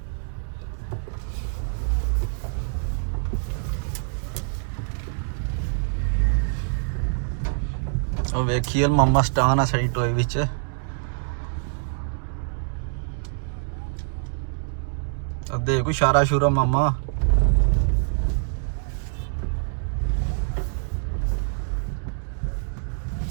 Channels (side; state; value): left; silent; digital silence